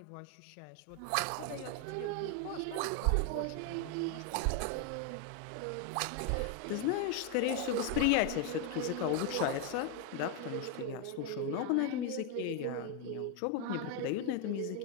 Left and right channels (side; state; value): both; different; correlation 0.01